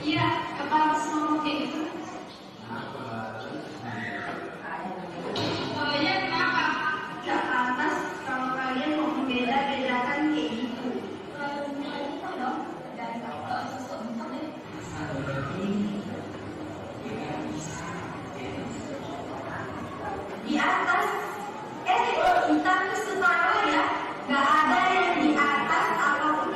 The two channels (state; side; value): identical; both; correlation 1.00